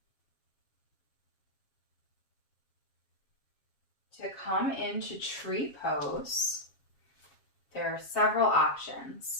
To come into tree pose, there are several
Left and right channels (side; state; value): right; late; 7.3 ms